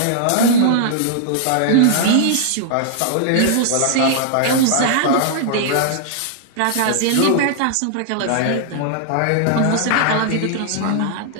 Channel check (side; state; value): both; different; correlation -0.01